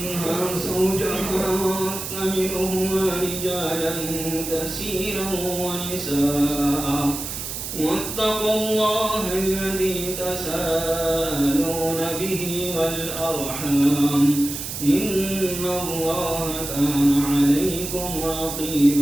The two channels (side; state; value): right; noise; hiss, 6 dB below the sound